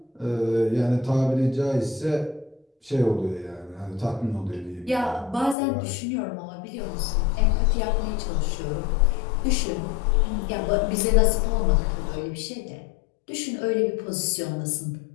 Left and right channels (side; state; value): right; drops out; at 5.6 s